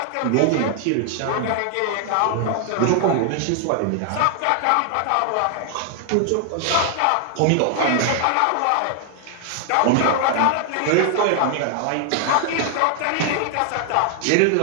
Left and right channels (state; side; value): different; both; correlation 0.00